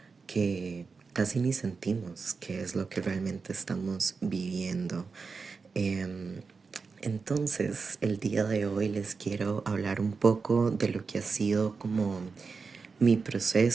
que casi ni sentimos qué es lo que realmente estamos viviendo. Em, entonces, el día de hoy les quiero hablar un poco de lo que ha sido como mi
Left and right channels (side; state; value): left; quieter; 4.8 dB